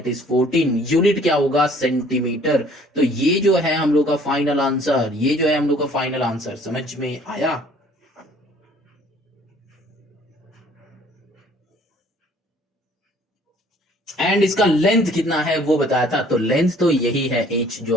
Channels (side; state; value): both; normal; correlation 0.56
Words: is 14, unit क्या होगा सेंटीमीटर। तो ये जो है हम लोग का फाइनल आंसर, ये जो है हम लोग का फाइनल आंसर, समझ में आया। एंड इसका लेंथ कितना है वो बताया था, तो लेंथ तो यही है h